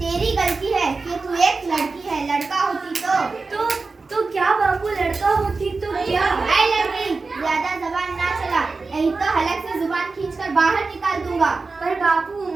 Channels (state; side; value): quieter; left; 4.0 dB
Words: गलती है कि तू एक लड़की है, लड़का होती तो क्या बापू, लड़का होती तो क्या? ऐ लड़की, ज्यादा जबान ना चला, नहीं तो हलक से जुबान खींचकर बाहर निकाल दूंगा। पर बापू,